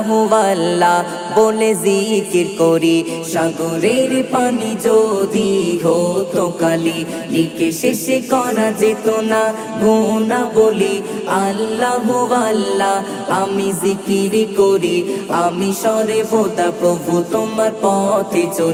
আল্লাহ বলে জিকির করি। সাগরের পানি যদি হতো কালি, লিখে শেষে করা যেত না গোনা বলি। আল্লাহ আল্লাহ আমি জিকির করি, আমি সরে বোদা প্রভু তোমার পথে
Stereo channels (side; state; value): both; identical; correlation 1.00